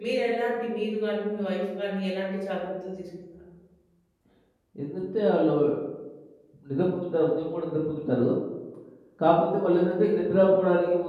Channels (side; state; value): both; identical; correlation 1.00